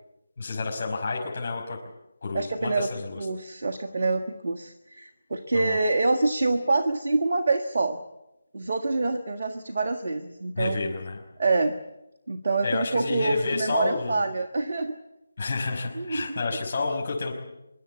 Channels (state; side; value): inverted; both; correlation -0.89